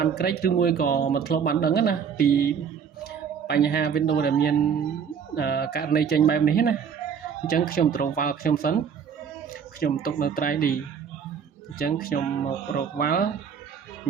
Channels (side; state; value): left; quieter; 7.2 dB